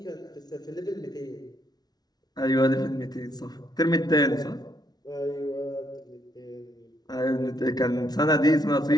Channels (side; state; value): right; late; 0.19 ms